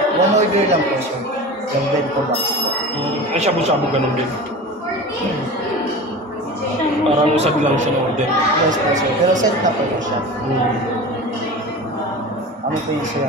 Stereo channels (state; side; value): normal; both; correlation 0.33